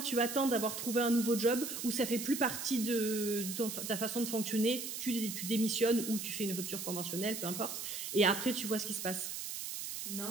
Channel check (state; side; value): noise; right; hiss, 6 dB below the sound